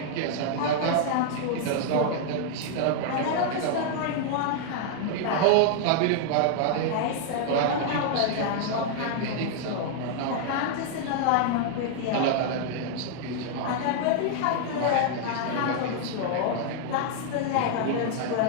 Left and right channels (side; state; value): both; different; correlation 0.00